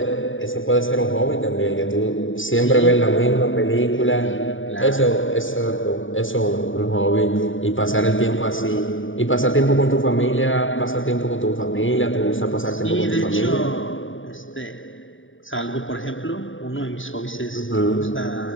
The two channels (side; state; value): right; late; 0.57 ms